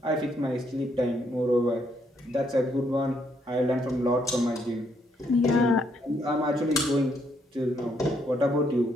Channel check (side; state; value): both; normal; correlation 0.73